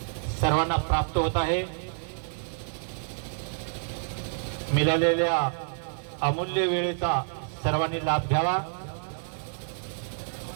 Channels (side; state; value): left; silent; 59 dB below the other